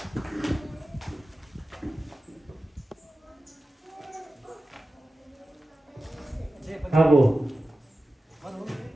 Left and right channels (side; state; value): both; normal; correlation 0.94